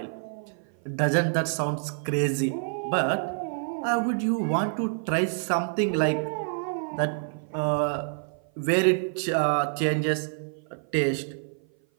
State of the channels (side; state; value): left; silent; 56 dB below the other